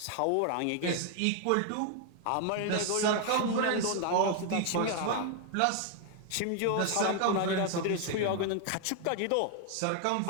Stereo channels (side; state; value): both; different; correlation 0.00